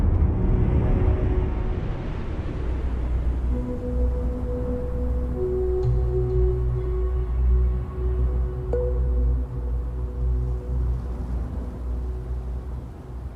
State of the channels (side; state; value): both; identical; correlation 1.00